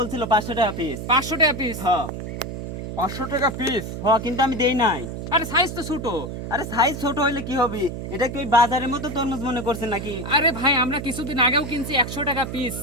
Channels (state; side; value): noise; right; hum, 7 dB below the sound